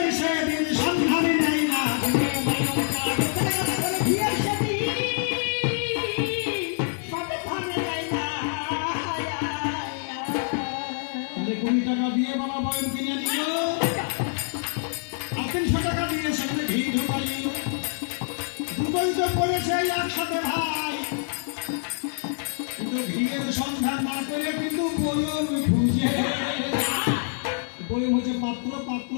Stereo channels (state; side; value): silent; right; digital silence